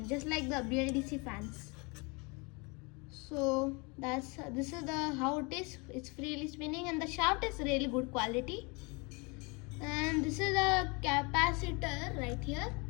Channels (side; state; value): right; quieter; 29.3 dB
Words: just like the BLDC fans. So this is how it is. It's freely spinning and the shaft is really good quality. And this is a capacitor right here.